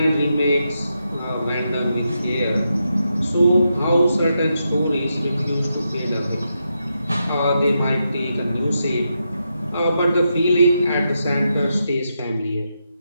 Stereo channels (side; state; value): both; inverted; correlation -0.84